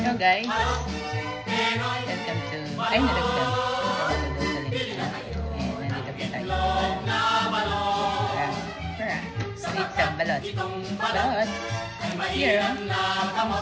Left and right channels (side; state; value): both; identical; correlation 1.00